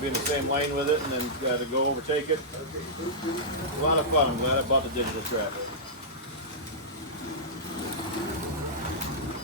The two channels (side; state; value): both; normal; correlation -0.13